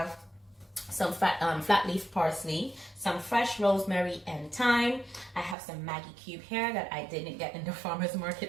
some flat leaf parsley, some fresh rosemary and thyme. I have some Maggi cube here that I didn't get in the farmer's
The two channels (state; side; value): drops out; left; at 5.6 s